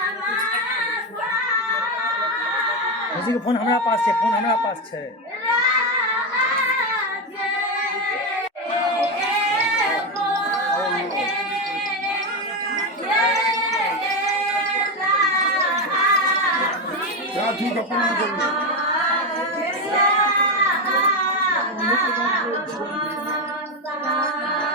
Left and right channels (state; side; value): normal; both; correlation 0.11